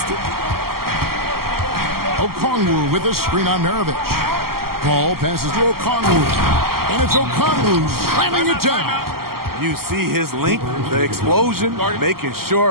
Okongwu with a screen on Maravich. Paul passes to Okongwu. And it's Okongwu slamming it down. You see his length, the explosion, making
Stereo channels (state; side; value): late; left; 0.93 ms